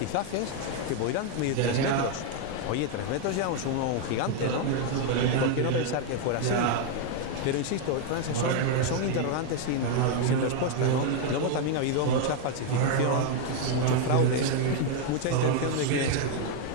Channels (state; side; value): different; both; correlation 0.00